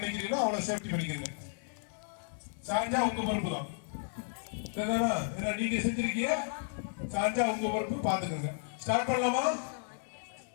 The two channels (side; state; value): right; silent; 55 dB below the other